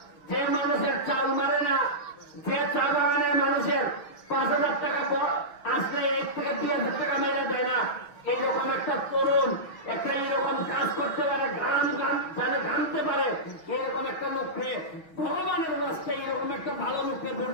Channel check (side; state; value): right; late; 6.2 ms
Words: যে মানুষের চাল মারে না, যে চা বাগানের মানুষের 5,000 টাকা আসলে 1 থেকে 2,000 টাকা মেরে দেয় না, এইরকম একটা তরুণ একটা এইরকম কাজ করতে পারে, গান জানে গানতে পারে, এরকম একটা লোককে ভগবানের রাস্তায় এরকম একটা ভালো লোককে ভোট